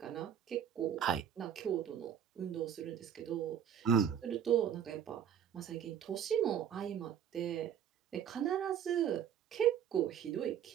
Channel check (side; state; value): left; quieter; 8.9 dB